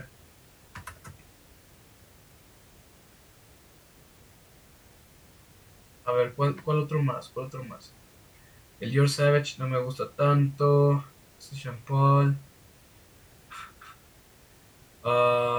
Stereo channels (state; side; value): identical; both; correlation 1.00